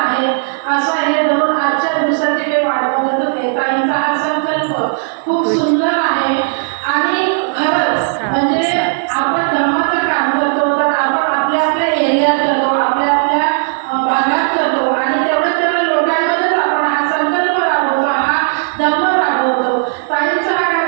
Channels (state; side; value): silent; left; 67 dB below the other